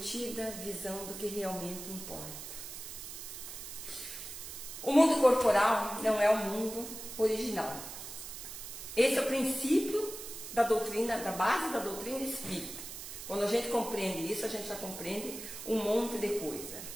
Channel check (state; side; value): noise; right; hiss, 10 dB below the sound